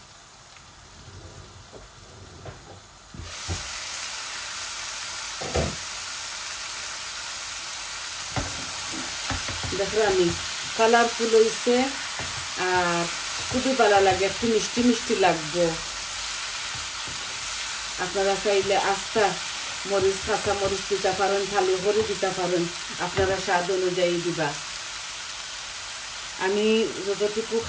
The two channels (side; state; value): both; identical; correlation 1.00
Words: দেখো আমি কালারফুল হয়েছে আর খুবই ভালো লাগে, একটু মিষ্টি মিষ্টি লাগবে। আপনারা চাইলে আস্তা মরিচ, কাঁচা মরিচ দিতে পারেন, ভালো করে দিতে পারেন, আপনারা স্বাদ অনুযায়ী দিবা। আমি যতটুকু